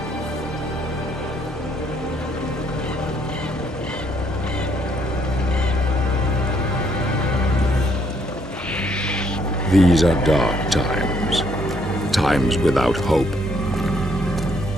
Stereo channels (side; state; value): both; normal; correlation 0.69